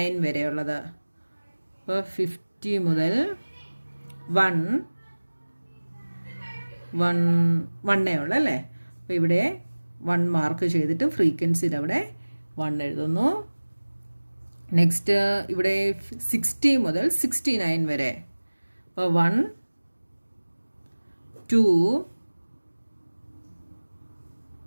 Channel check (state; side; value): inverted; both; correlation -1.00